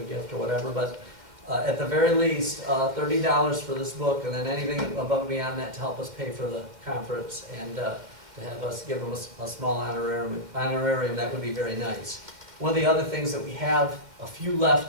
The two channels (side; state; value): left; late; 2.1 ms